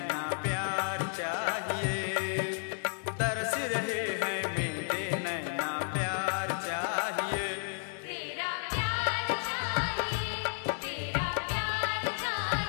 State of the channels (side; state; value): right; silent; digital silence